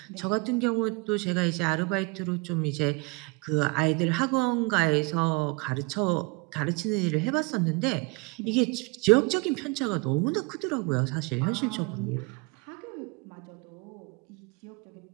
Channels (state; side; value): quieter; left; 28.3 dB